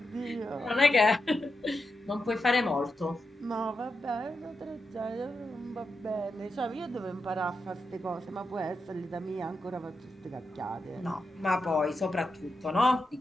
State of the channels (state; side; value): normal; both; correlation 0.87